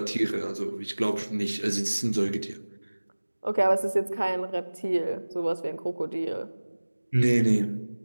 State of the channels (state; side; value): inverted; both; correlation -1.00